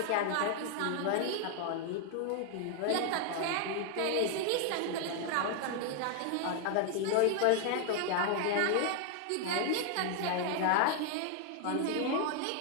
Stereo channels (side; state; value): both; different; correlation 0.00